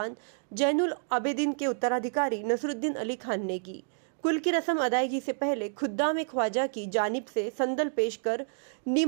जैनुल आबिदीन के उत्तराधिकारी नसरुद्दीन अली खान ने की। कुल की रस्म अदायगी से पहले खुद्दाम ख्वाजा की जानिब से संदल पेश कर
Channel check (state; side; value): silent; left; digital silence